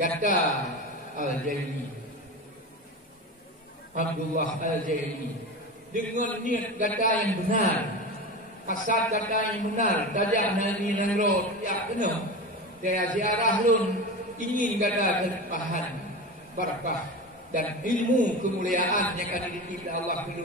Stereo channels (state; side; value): normal; both; correlation 0.26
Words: kata Al-Zaini, Abdullah Al-Zaini, dengan niat kata yang benar, asal kata yang benar, tajak nani nangro, ya benar, saya ziarah lun ingin kata terpahan, barakah. Dan ilmu kemuliaan yang akan dititip Allah